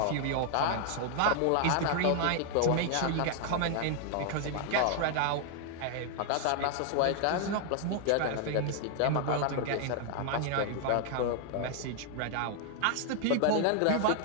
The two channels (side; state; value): both; different; correlation 0.00